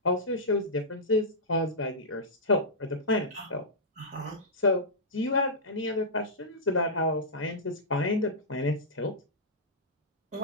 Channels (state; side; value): normal; both; correlation -0.13